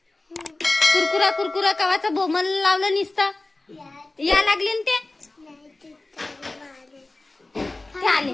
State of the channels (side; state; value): right; quieter; 3.0 dB